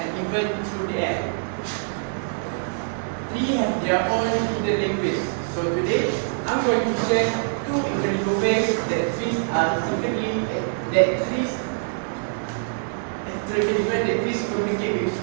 and even through the air? Trees have their own hidden language. So today, I'm going to share two incredible ways that trees communicate with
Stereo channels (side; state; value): left; silent; digital silence